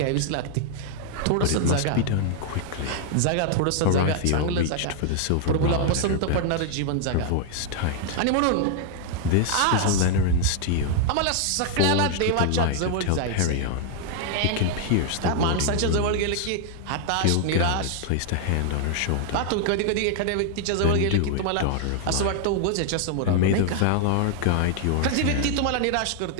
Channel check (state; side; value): different; both; correlation 0.00